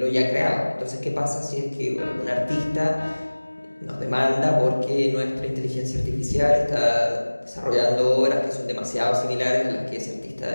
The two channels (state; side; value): inverted; both; correlation -1.00